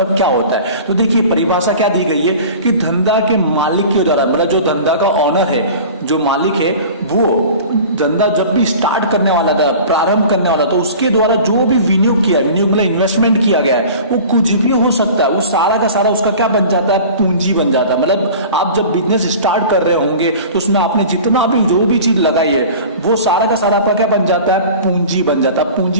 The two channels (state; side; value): inverted; both; correlation -0.40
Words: क्या होता है। तो देखिए परिभाषा क्या दी गई है कि धंधा के मालिक के द्वारा, मतलब जो धंधा का ऑनर है, जो मालिक है, वो धंधा जब भी स्टार्ट करने वाला था, प्रारंभ करने वाला, तो उसके द्वारा जो भी विनियोग किया, विनियोग मतलब इन्वेस्टमेंट किया गया है, वो कुछ भी हो सकता है, वो सारा का सारा उसका क्या बन जाता है? पूंजी बन जाता है। मतलब आप जब बिजनेस स्टार्ट कर रहे होंगे तो उसमें आपने जितना भी जो भी चीज लगाई है वो सारा का सारा आपका क्या बन जाता है? पूंजी बन जाता है।